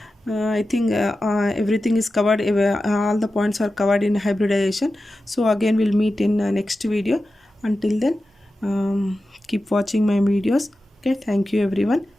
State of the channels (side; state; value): both; normal; correlation 0.93